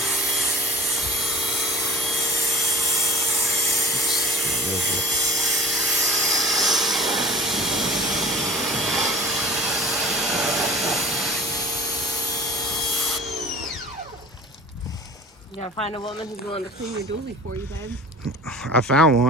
You gotta find a woman who's willing to clean your dually for you, babe. I found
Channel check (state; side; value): normal; both; correlation 0.42